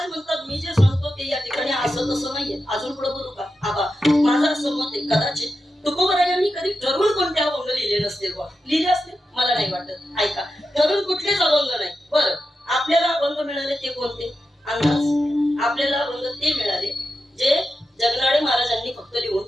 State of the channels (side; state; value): both; normal; correlation 0.89